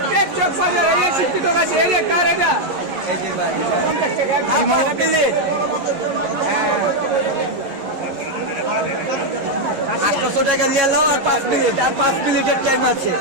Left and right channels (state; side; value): late; left; 11 ms